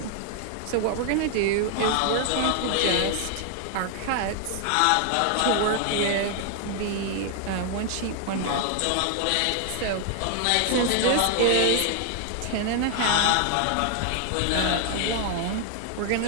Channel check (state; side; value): different; both; correlation 0.00